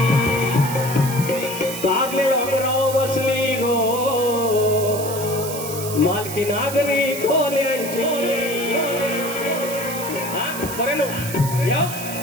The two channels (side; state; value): right; noise; hiss, 9 dB below the sound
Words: कारले डोंगराव बसली गो मालकी नागरी खोल्यांची. बरं नो